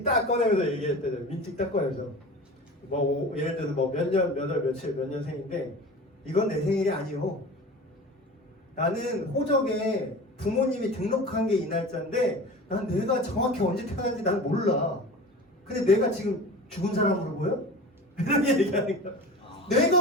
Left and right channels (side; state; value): both; normal; correlation 0.35